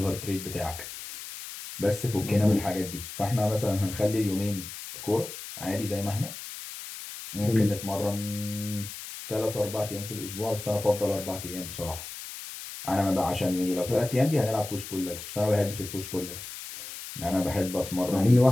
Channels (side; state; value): left; noise; hiss, 11 dB below the sound